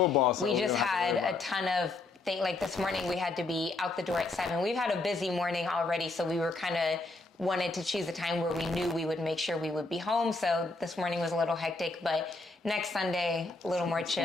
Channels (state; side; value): quieter; right; 3.2 dB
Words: football, so we just had a ton of things. Like this morning, we had to be out the door at 7. We've had a busy morning already, so we were kind of wanted to choose a time where we knew we would make sure we would be home. So this morning was a little hectic, but next Sunday, a little more